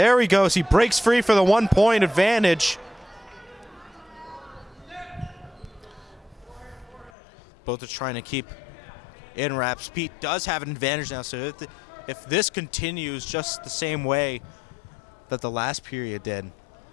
he goes. He breaks free for the 1 point advantage. Both are trying to keep in wraps. Pete does have an advantage now, so if this continues just the same way that the last period did,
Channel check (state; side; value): drops out; right; at 7.1 s